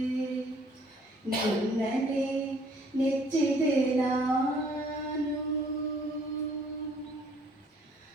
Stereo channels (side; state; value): both; normal; correlation 0.60